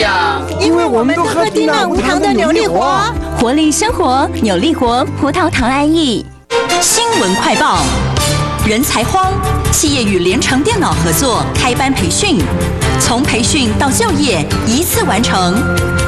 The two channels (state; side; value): identical; both; correlation 1.00